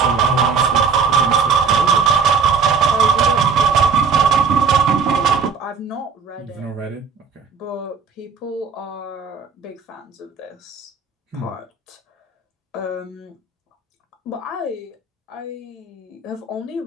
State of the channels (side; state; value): left; quieter; 5.5 dB